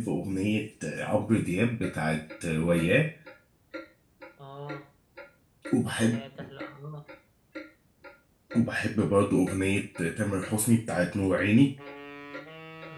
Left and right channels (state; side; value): identical; both; correlation 1.00